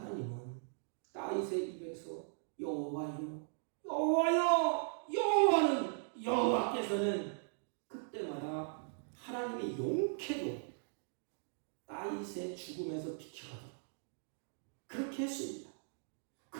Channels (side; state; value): left; silent; digital silence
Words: 다윗의 입에서 여호와는 여호와께서는 그때마다 하나님의 용케도 다윗의 죽음에서 비켜가도록 그렇게 했습니다.